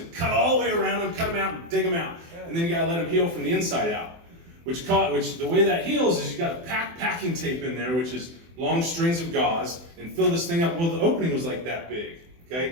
cut all the way around them, cut them out, and dig them out. And then you got to let them heal from the inside out. Which the way that heals is you got to pack packing tape in there, which is long strings of gauze, and fill this thing up. Well, the opening was like that big.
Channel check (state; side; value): late; left; 24 ms